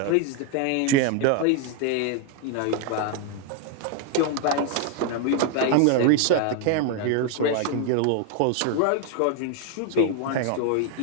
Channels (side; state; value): both; different; correlation 0.01